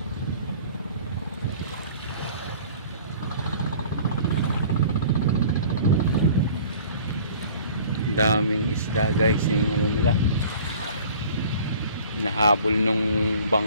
Daming isda guys, yung ano nila, nahabol nung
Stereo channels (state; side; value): inverted; both; correlation -0.48